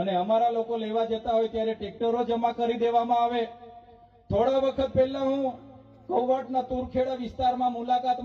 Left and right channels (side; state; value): both; identical; correlation 1.00